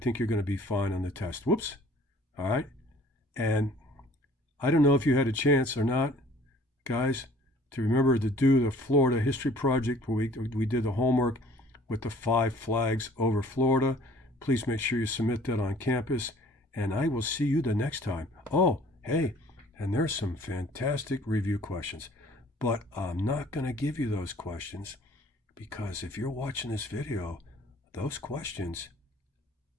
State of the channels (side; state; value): both; normal; correlation 0.54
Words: you're going to be fine on the test. Whoops. All right. And I don't know if you had a chance or not, guys, to remember to do the Florida History Project where we did the homework with the 5 flags over Florida. Please make sure you submit that on campus, and I will see you the next time. Oh, hey, and there's some fantastic review questions, but I'm not going to give you those questions because if you're watching this video, those questions